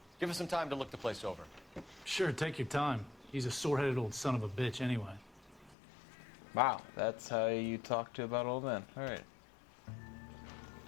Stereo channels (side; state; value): right; drops out; at 5.8 s